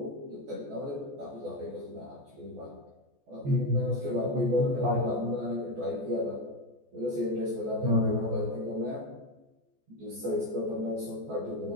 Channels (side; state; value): left; late; 14 ms